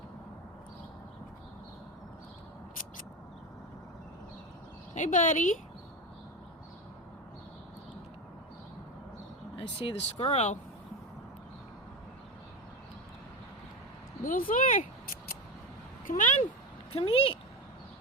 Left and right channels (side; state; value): both; normal; correlation 0.20